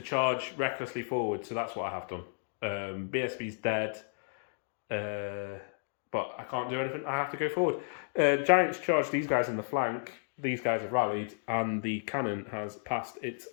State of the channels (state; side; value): silent; right; digital silence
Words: charge recklessly forward, so that's what I have done. BSB's dead, but I can't do anything. I have to go forward. Giants charge these guys in the flank. These guys have rallied, and the cannon has passed its